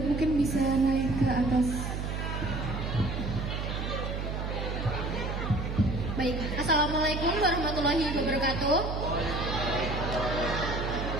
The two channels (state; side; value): noise; right; hum, 3 dB below the sound